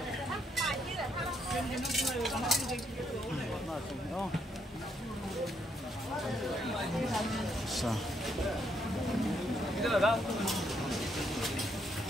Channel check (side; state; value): both; normal; correlation 0.74